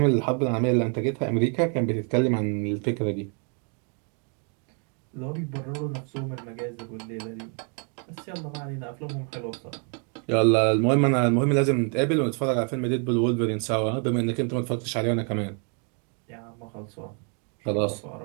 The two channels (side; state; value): left; quieter; 39.4 dB